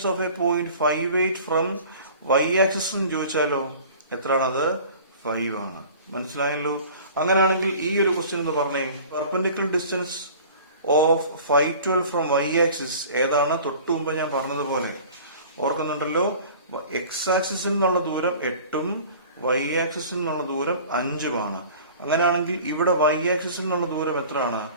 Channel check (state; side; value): inverted; both; correlation -0.44